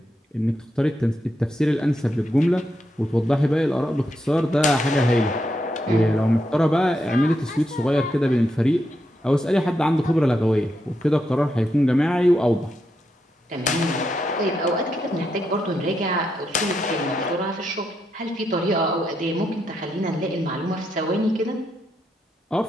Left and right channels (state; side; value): normal; both; correlation 0.82